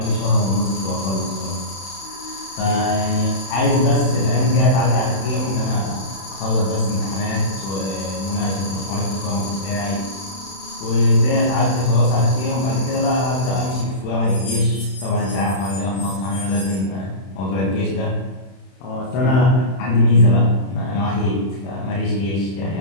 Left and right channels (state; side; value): late; right; 31 ms